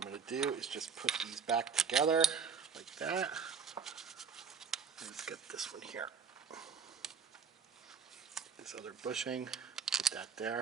to do is just put these back together like that. Let's get this one here. This other bushing, put that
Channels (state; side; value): quieter; left; 6.2 dB